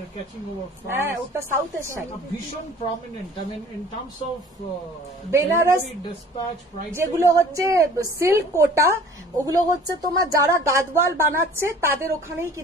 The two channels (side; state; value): both; normal; correlation 0.48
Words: are catching over হ্যাঁ ফাস্ট। ওটা সাউথের শাড়ি, ভীষণ prominent, I mean in terms of Benaras dispatch price. যেগুলো হচ্ছে সিল্ক কোটা, ওগুলো হচ্ছে তোমার যারা গাদওয়াল বানাচ্ছে তাদের ওখানেই